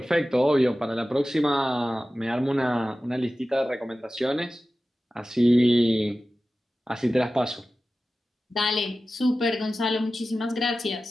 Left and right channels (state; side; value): normal; both; correlation 0.95